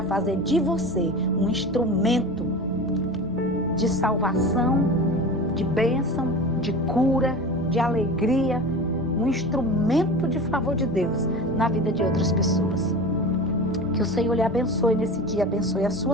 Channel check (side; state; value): both; normal; correlation 0.32